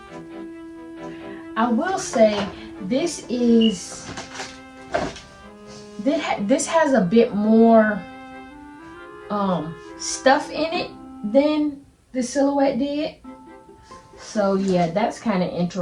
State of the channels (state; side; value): identical; both; correlation 1.00